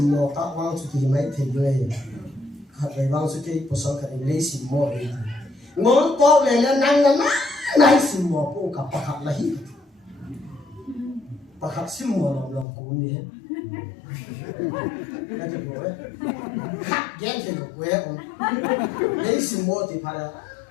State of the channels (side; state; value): right; drops out; at 12.7 s